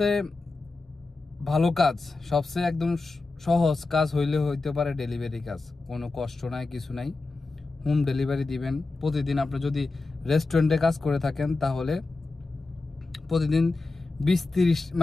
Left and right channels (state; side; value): quieter; right; 3.5 dB